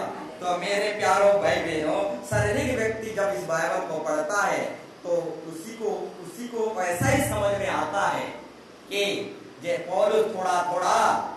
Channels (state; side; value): identical; both; correlation 1.00